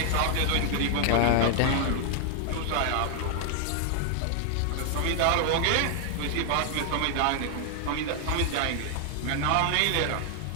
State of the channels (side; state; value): both; different; correlation 0.00